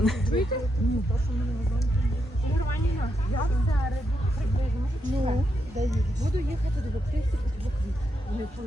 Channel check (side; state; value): both; normal; correlation 0.82